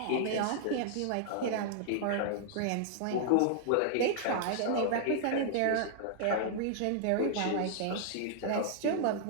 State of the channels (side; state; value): both; different; correlation -0.01